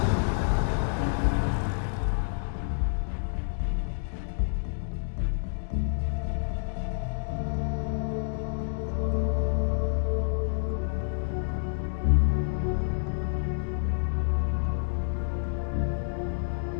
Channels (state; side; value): silent; right; digital silence